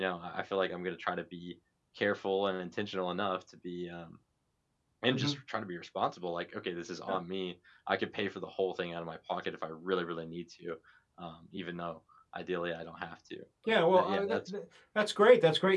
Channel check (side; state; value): both; identical; correlation 1.00